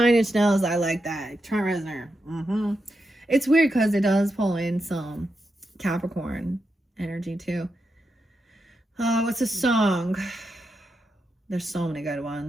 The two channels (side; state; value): both; normal; correlation 0.86